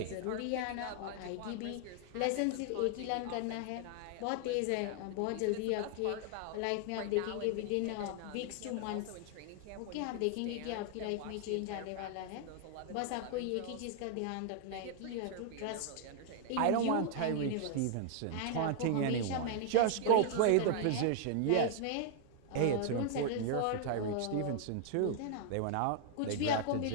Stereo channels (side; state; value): both; different; correlation 0.00